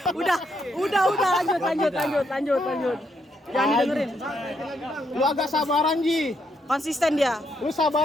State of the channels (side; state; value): both; normal; correlation 0.77